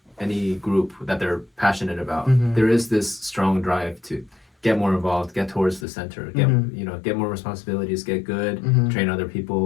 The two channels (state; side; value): drops out; right; at 5.9 s